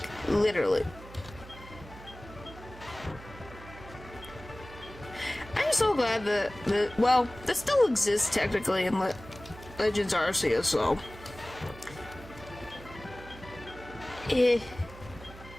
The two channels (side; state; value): right; noise; hum, 17 dB below the sound